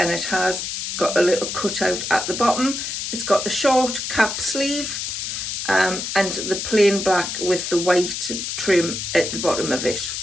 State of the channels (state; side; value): noise; left; hiss, 4 dB below the sound